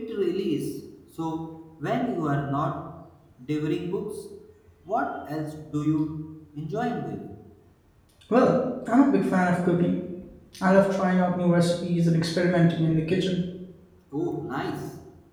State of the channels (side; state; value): both; identical; correlation 1.00